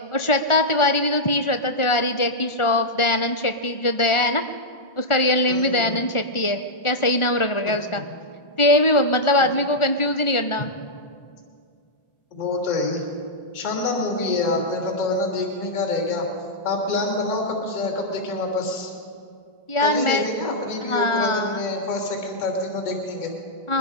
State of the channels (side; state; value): right; late; 1.4 ms